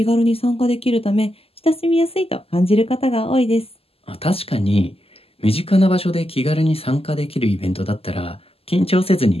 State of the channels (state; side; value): late; right; 0.28 ms